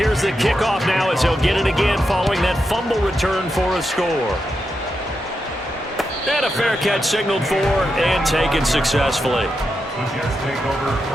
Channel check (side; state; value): both; normal; correlation 0.86